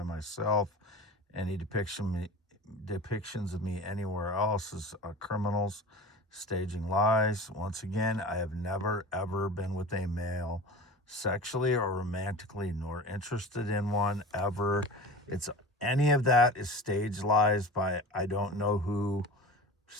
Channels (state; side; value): normal; both; correlation 0.35